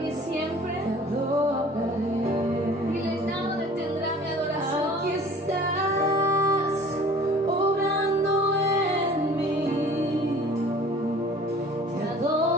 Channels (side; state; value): both; normal; correlation 0.47